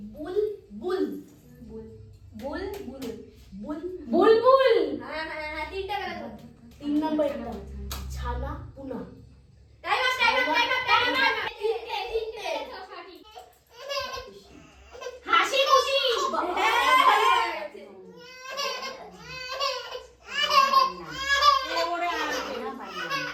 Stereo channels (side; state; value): both; identical; correlation 1.00